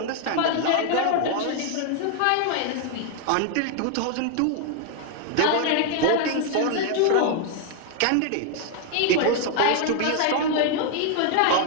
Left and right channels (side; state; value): both; different; correlation 0.00